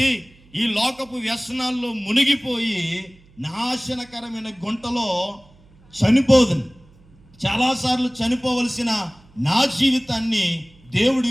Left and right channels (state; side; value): noise; right; hum, 28 dB below the sound